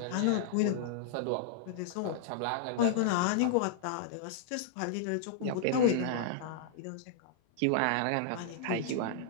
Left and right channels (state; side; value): different; both; correlation -0.02